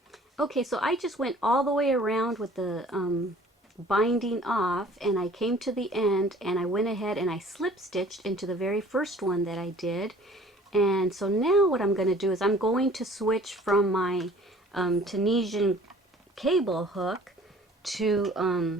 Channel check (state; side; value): normal; both; correlation 0.51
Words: Okay, so I just went all the way around with the binding off, and I came to the end, and I went ahead and I slip stitched into the very first one that I did. And so now what I'm going to do is I'm going to switch from my Tunisian cable hook